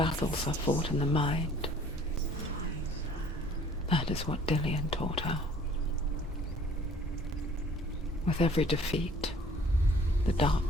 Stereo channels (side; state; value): both; normal; correlation 0.54